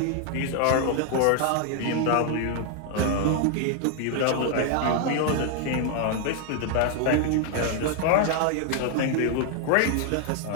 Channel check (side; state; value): both; different; correlation 0.00